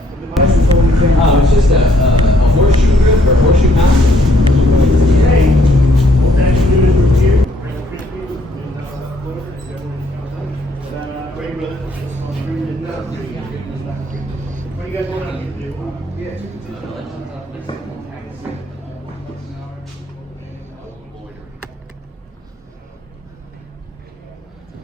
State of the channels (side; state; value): both; normal; correlation 0.67